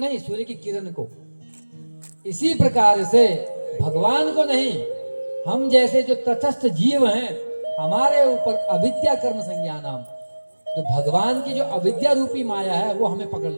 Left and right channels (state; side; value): inverted; both; correlation -1.00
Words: सूर्य की किरण को। इसी प्रकार से भगवान को नहीं, हम जैसे जो तटस्थ जीव हैं, हमारे ऊपर अविद्या कर्म संज्ञानाम, जो भगवान की जो अविद्या रूपी माया है वो हमें पकड़